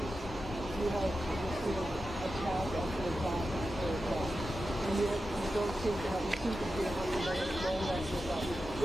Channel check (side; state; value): both; normal; correlation 0.91